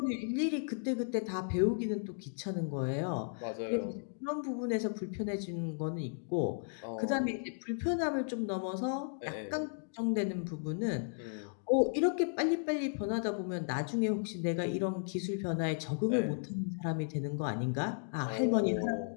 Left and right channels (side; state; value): right; silent; digital silence